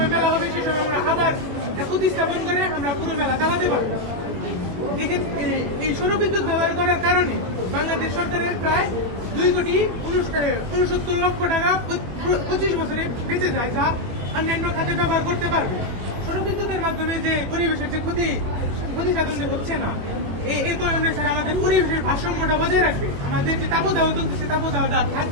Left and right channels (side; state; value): left; late; 22 ms